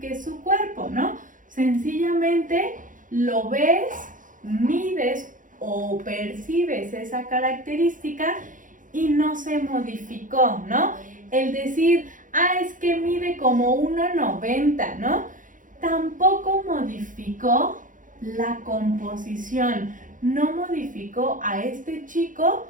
su cuerpo, ¿no? Sencillamente lo ves, mides o percibes esa característica y no se modificó, ¿no? El decir, es que mide como 1,90, ¿no? Tampoco modificó la composición, no modificó a este chico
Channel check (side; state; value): left; late; 0.38 ms